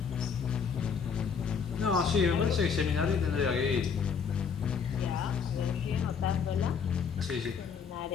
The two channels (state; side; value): quieter; right; 6.3 dB